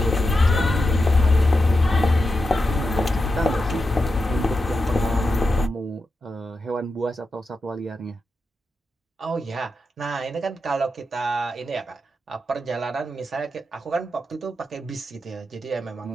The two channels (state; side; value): normal; both; correlation 0.88